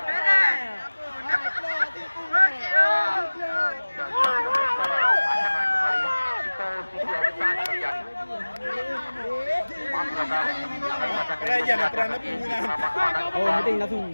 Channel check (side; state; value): both; inverted; correlation -1.00